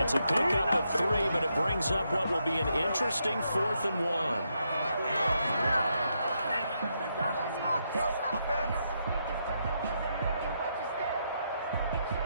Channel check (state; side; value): inverted; both; correlation -0.80